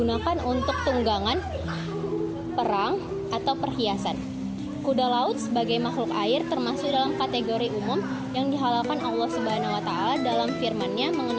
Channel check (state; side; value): identical; both; correlation 1.00